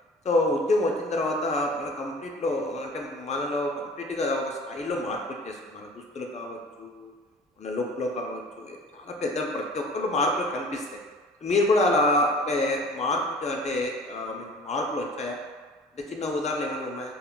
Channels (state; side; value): normal; both; correlation 0.45